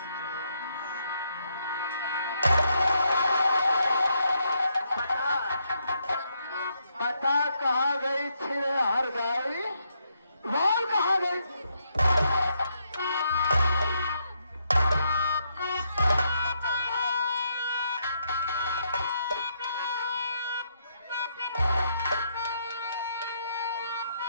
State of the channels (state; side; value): inverted; both; correlation -0.77